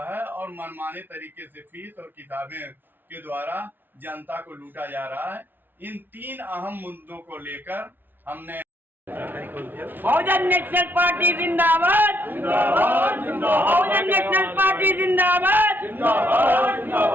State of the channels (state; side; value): late; left; 0.093 ms